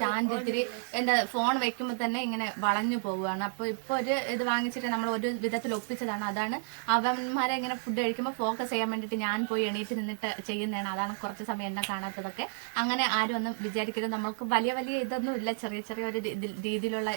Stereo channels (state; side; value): silent; left; digital silence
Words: ഇത്തിരി ഫോൺ വെക്കുമ്പോൾ തന്നെ ഇങ്ങനെ വളഞ്ഞു പോവുകയാണ്. അപ്പൊ ഇപ്പൊ ഒരു ഇത് വാങ്ങിച്ചിട്ട് നമ്മൾ ഒരു വിധത്തിൽ ഒപ്പിച്ചതാണ്. അതാണ് അവന്മാരെ ഇങ്ങനെ ഫുഡ് കഴിക്കുമ്പോൾ ഫോക്കസ് ചെയ്യാൻ വേണ്ടിട്ട് ഞാൻ പോയി എണീറ്റ് നിന്നിട്ട് ചെയ്യുന്നതാണ്. അതാണ് കുറച്ച് സമയം എന്നെ കാണാത്തതൊക്കെ. അങ്ങനെ ആരും ഒന്നും വിചാരിക്കരുത്. നമുക്ക് വലിയ ഇതൊന്നും ഇല്ല. ചെറിയ ഒരു രീതിയിലുള്ള